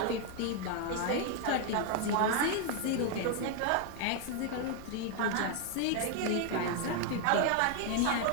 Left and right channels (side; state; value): both; different; correlation 0.01